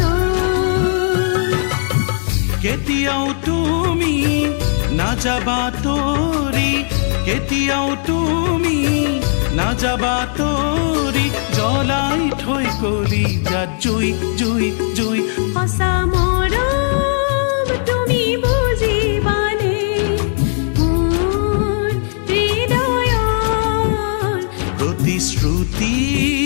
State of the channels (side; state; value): right; silent; digital silence